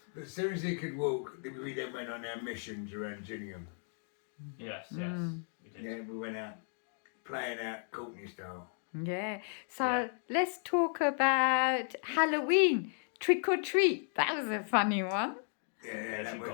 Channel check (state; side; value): silent; right; 55 dB below the other